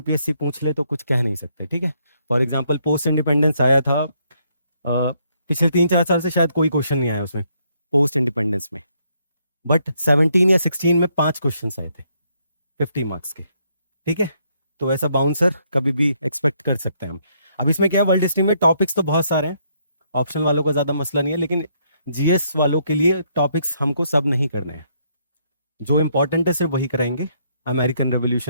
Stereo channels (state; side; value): inverted; both; correlation -0.72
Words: पूछ ले तो कुछ कह नहीं सकते। ठीक है, फॉर एग्जाम्पल पोस्ट इंडिपेंडेंस आया था, पिछले 3-4 साल से शायद कोई क्वेश्चन नहीं आया उसमें पोस्ट इंडिपेंडेंस में, बट 17 या 16 में 5 क्वेश्चन आए थे 50 मार्क्स के। ठीक है, तो ऐसा बाउंसर कभी भी एक्सपेक्ट कर सकते हैं हम। अब इसमें क्या है, वर्ल्ड हिस्ट्री में टॉपिक्स तो बहुत सारे हैं, ऑप्शन वालों का ज्यादा मसला नहीं है, लेकिन जीएस वालों के लिए टॉपिक्स हमको सब नहीं करने हैं, जो इंपॉर्टेंट है सिर्फ वही कराएंगे। अमेरिकन